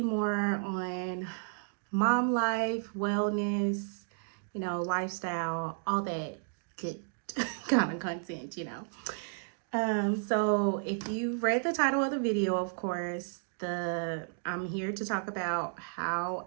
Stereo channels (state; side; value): silent; left; digital silence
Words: more on mom life, wellness, lifestyle, all that good kind of content. So if you read the title of the video, of course, I'm here to talk about how